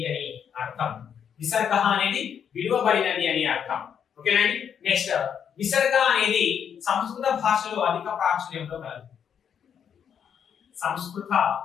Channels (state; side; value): quieter; right; 8.0 dB